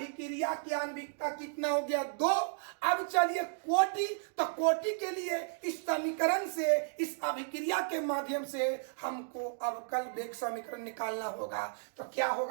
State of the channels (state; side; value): silent; left; digital silence